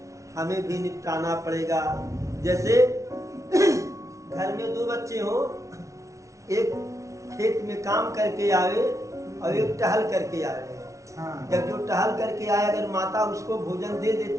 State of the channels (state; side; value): late; left; 0.15 ms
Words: हमें भी निपटाना पड़ेगा। जैसे घर में दो बच्चे हो, एक खेत में काम करके आवे और एक टहल करके आवे। जब जो टहल करके आए, अगर माता उसको भोजन दे